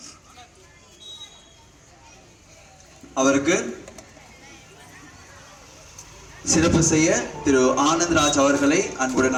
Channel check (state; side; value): identical; both; correlation 1.00